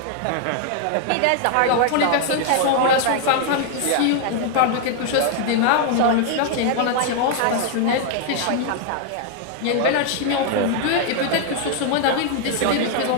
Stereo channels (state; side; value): different; both; correlation 0.00